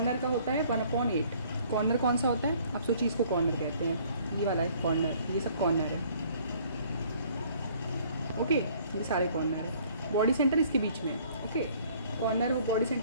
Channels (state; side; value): inverted; both; correlation -0.57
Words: का होता है 1/8। कॉर्नर कौन सा होता है, आप सोचिए इसको कॉर्नर कहते हैं। ये वाला है कॉर्नर, ये सब कॉर्नर है। ओके, ये सारे कॉर्नर है। बॉडी सेंटर इसके बीच में। ओके, कॉर्नर और बॉडी